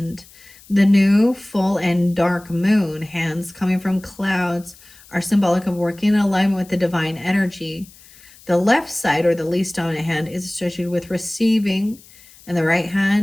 The new, full, and dark moon hands coming from clouds are symbolic of working in alignment with the divine energy. The left side, or the least dominant hand, is associated with receiving, and the right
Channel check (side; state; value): left; noise; hiss, 24 dB below the sound